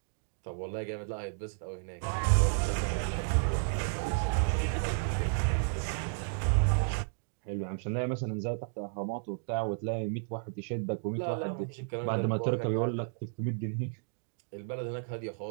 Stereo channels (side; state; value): left; silent; digital silence